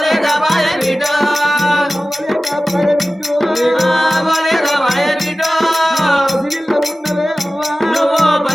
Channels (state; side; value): normal; both; correlation 0.96